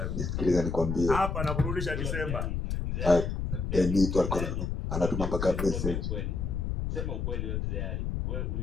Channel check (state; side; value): noise; left; rumble, 2 dB below the sound